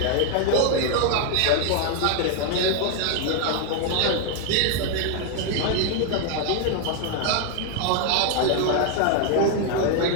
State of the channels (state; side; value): different; both; correlation 0.00